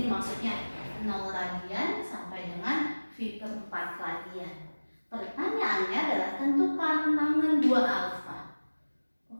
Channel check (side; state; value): both; inverted; correlation -1.00